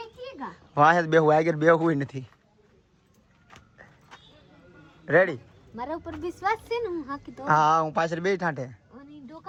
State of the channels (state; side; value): identical; both; correlation 1.00